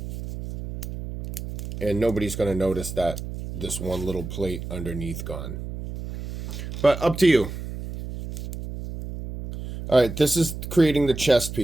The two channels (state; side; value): noise; right; hum, 8 dB below the sound